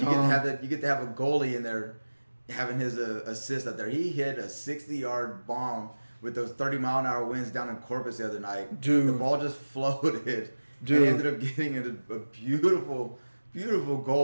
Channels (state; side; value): inverted; both; correlation -1.00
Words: You get to have a goalie in there having his assist up there. He hit a 60-yard bomb with those 30-mile-an-hour winds down in Corpus the other night. Dude. The ball just floated. Dude. And ended up getting a beautiful, beautiful